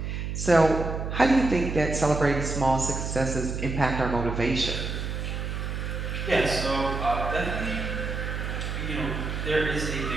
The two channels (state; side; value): noise; right; hum, 4 dB below the sound